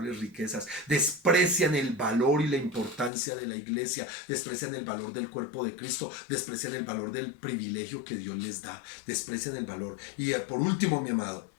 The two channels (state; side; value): drops out; right; at 3.1 s